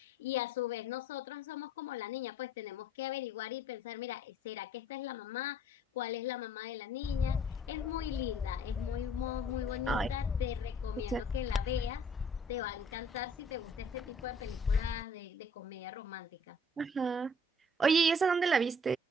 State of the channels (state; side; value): normal; both; correlation 0.57